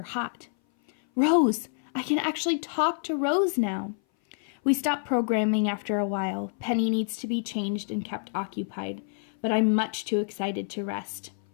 hot. Rose, I can actually talk to Rose now. We stopped programming after a while. Penny needs to be changed and kept occupied, but I'm much too excited to rest.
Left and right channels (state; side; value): silent; right; 58 dB below the other